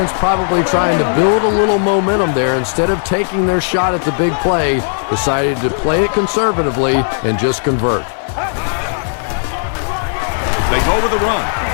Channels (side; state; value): right; silent; 59 dB below the other